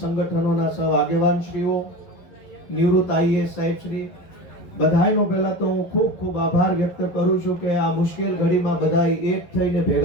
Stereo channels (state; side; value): late; right; 11 ms